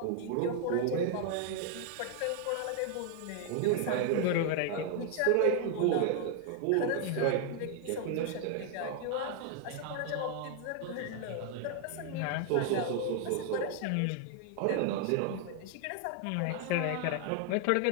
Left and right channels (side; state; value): both; different; correlation 0.00